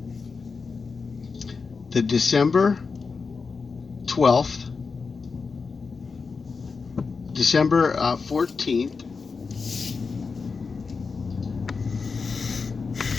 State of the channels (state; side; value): quieter; right; 4.8 dB